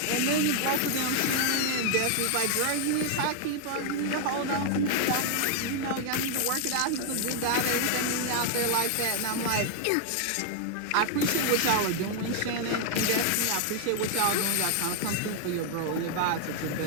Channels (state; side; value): different; both; correlation 0.00